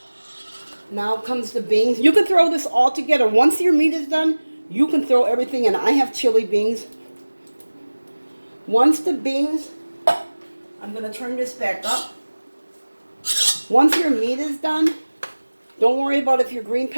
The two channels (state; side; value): inverted; both; correlation -1.00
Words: Now comes the beans. You can throw this all together. Once your meat is done, you can throw everything in. I have chili beans. Once the beans, I'm going to turn this back up. Once your meat is done, don't worry about if your green